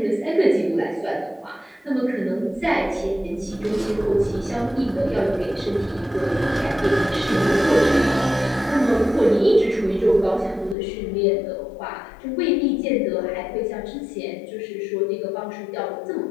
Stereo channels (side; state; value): right; drops out; at 10.8 s